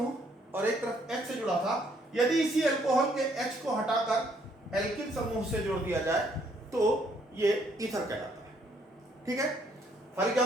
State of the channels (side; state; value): both; normal; correlation 0.68